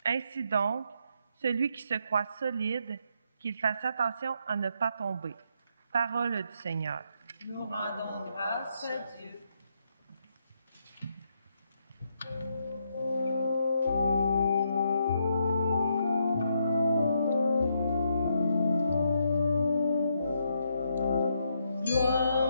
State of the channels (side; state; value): both; inverted; correlation -0.77